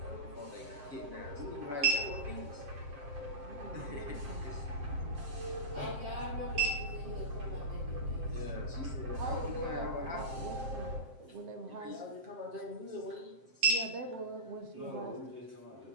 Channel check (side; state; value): left; late; 7.6 ms